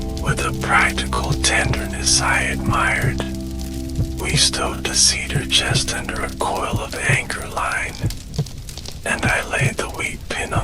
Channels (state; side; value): identical; both; correlation 1.00